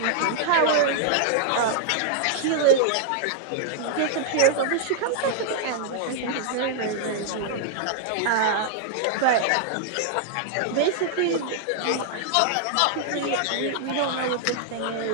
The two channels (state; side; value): different; both; correlation -0.01